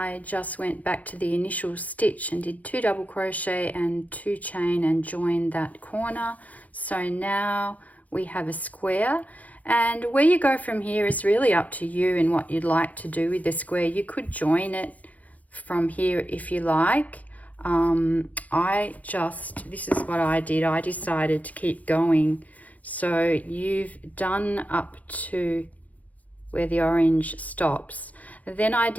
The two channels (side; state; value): right; late; 0.074 ms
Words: just went back to the initial stitch and did 2 double crochet and 2 chain and joined that corner. So now we have a square, and where you go from here is really up to you and what you'd like to do with the square. You could join it from here if you like. This is what I did. I decided to keep going. So you've done up to where the orange stops. Then I